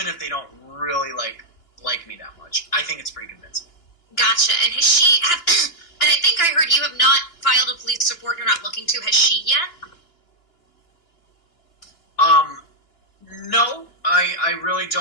if they don't really like me that much. I think it's pretty convincing. Gotcha. And has she, and I think I heard you have not filed a police report and you're not looking to. Has she yet? No, I really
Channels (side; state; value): right; late; 2.9 ms